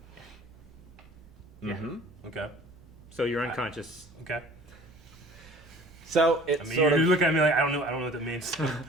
Mm-hmm. Okay. So you're unconscious. Okay. So it's I mean, sort you of look at me like I don't know what that means. You're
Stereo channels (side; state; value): right; noise; rumble, 26 dB below the sound